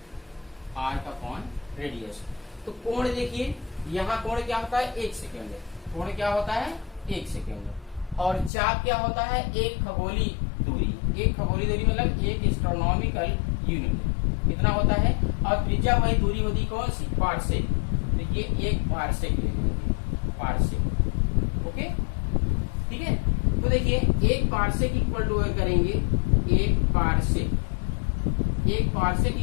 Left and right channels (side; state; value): right; drops out; at 8.5 s